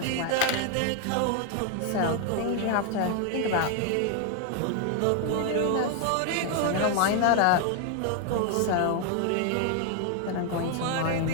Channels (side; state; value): both; different; correlation 0.00